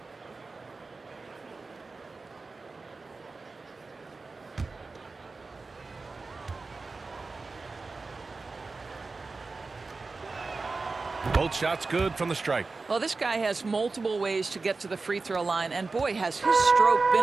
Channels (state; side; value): quieter; left; 3.9 dB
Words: Both shots good from the stripe. Well, this guy has multiple ways to get to the free throw line, and boy, has his stroke